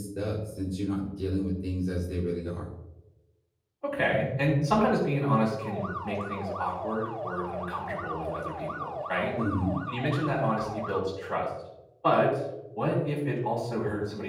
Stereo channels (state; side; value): identical; both; correlation 1.00